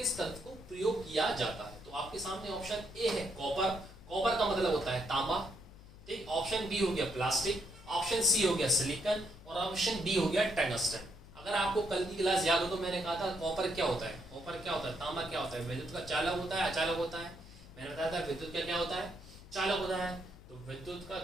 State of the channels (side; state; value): left; noise; hum, 19 dB below the sound